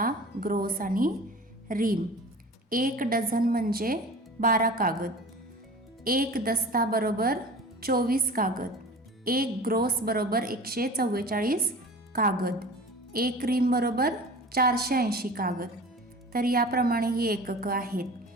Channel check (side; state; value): both; normal; correlation 0.39